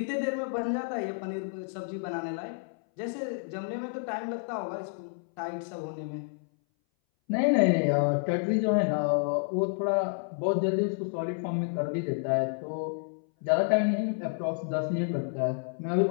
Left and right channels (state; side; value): silent; right; 58 dB below the other